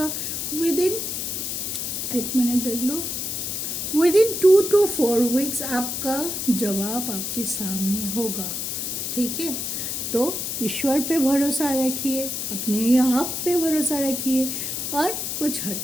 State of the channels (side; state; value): left; noise; hiss, 3 dB below the sound